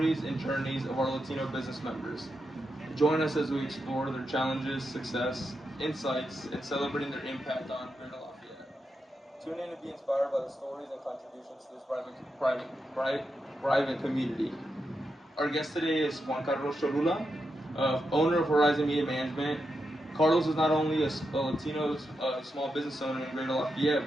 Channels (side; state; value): both; normal; correlation 0.86